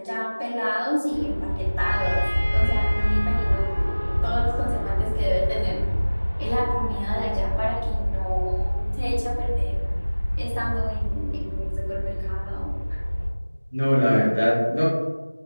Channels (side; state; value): both; inverted; correlation -1.00